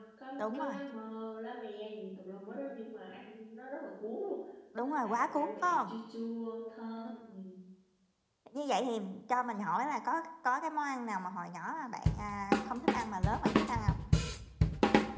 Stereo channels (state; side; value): identical; both; correlation 1.00